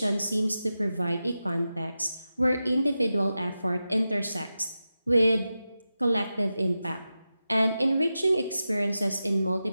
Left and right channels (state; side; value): inverted; both; correlation -0.92